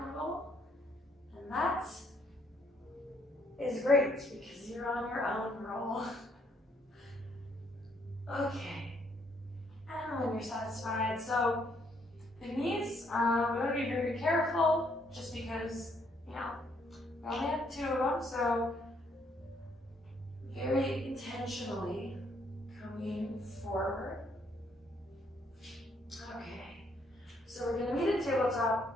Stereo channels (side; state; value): both; normal; correlation 0.70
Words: roll. And that is great because you're on your own roll. Okay. And when you're satisfied, so the knees, we want to be very careful just because, we only have two of them, so very intentionally coming forward. Okay, so we're going to meet at